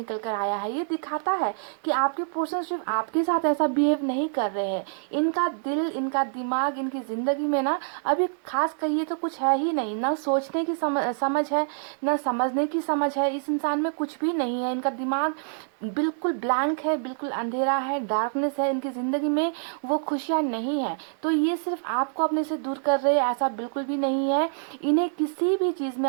कर आया है। ये दिखाता है कि आपके पर्सन सिर्फ आपके साथ ऐसा बिहेव नहीं कर रहे हैं। इनका दिल, इनका दिमाग, इनकी ज़िंदगी में ना अभी खास कहिए तो कुछ है ही नहीं। ना सोचने की समझ है, ना समझने की समझ है। इस इंसान में कुछ भी नहीं है। इनका दिमाग बिल्कुल ब्लैंक है, बिल्कुल अंधेरा है, डार्कनेस है इनकी ज़िंदगी में। वो खुशियाँ नहीं है। तो ये सिर्फ आपको अपने से दूर कर रहे हैं, ऐसा बिल्कुल भी नहीं है। इन्हें किसी भी चीज़ में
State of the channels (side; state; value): left; silent; digital silence